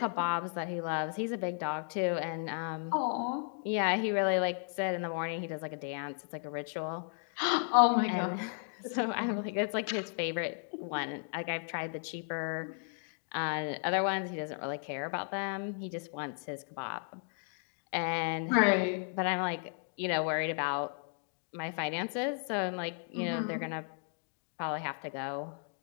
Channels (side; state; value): right; silent; 55 dB below the other